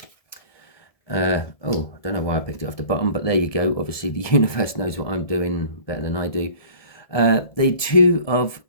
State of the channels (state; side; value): late; right; 1.7 ms